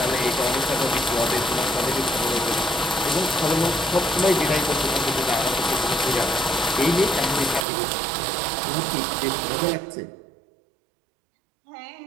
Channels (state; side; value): drops out; left; at 7.7 s